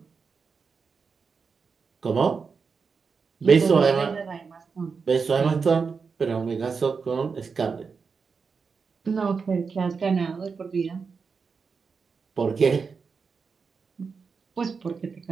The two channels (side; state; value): left; quieter; 5.3 dB